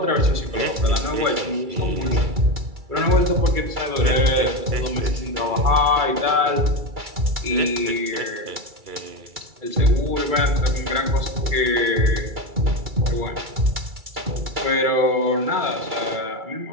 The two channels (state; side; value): late; left; 2.3 ms